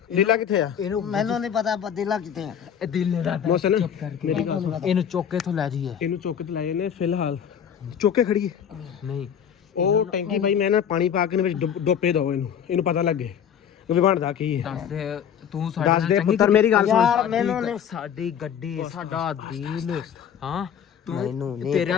ਲੀਲਾ ਕਿੱਥੇ ਆ ਇਹਨੂੰ ਮੈਨੂੰ ਨਹੀਂ ਪਤਾ ਅਦੀਲਾ ਕਿੱਥੇ ਆ। ਇਹ ਦਿਲ ਨੇ ਰਾਤ ਮੋਸਨ ਚੁੱਪ ਕਰਕੇ ਮੇਰੀ ਗੱਲ ਸੁਣ ਇਹਨੂੰ ਚੁੱਕ ਕੇ ਤੋਂ ਲੈ ਜਾਈਏ। ਇਹਨੂੰ ਚੁੱਕ ਤੇ ਲਾਏ ਨੇ ਫਿਲਹਾਲ ਚੁੱਕ ਕੇ ਖੜੀਏ ਨਹੀਂ ਉਹ ਟੈਂਕੀ ਭਾਈ ਮੈਂ ਨਾ ਪਾਣੀ ਪਾ ਕੇ ਨੇ ਵਿੱਚ ਡੋਪੇ ਦੋ ਇਹਨੂੰ ਪਤਾ ਲੱਗੇ ਵੀ ਬਣਦਾ ਕੀ ਹੈ ਦੱਸ ਦੇ ਤੂੰ ਸਾਡੇ ਦੱਸ ਨਾਲ ਦੇ ਚੰਗੀ ਪੁੱਤਰ ਮੇਰੀ ਗੱਲ ਯਾਰ ਸੁਣ ਮੈਨੂੰ ਨਹੀਂ ਸਾਡੀ ਗੱਡੀ ਸਾਡਾ ਦਿਲ ਹਾਂ ਮੈਨੂੰ ਨਹੀਂ ਤੇਰੇ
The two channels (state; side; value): quieter; right; 8.5 dB